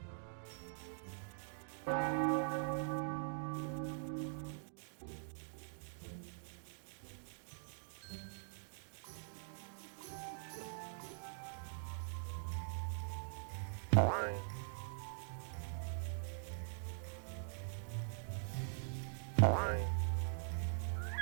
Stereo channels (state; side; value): silent; left; digital silence